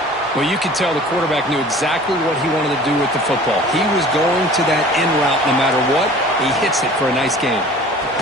Well, you could tell the quarterback knew exactly what he wanted to do with the football. He was going to that in route no matter what. He hits it for a nice gain.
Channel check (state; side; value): normal; both; correlation 0.46